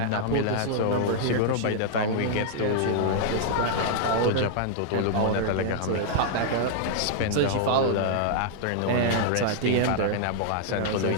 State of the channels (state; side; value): different; both; correlation -0.01